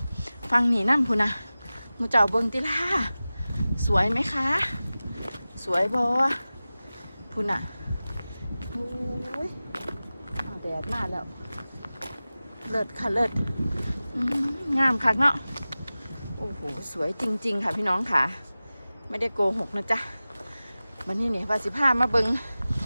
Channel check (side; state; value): both; inverted; correlation -0.97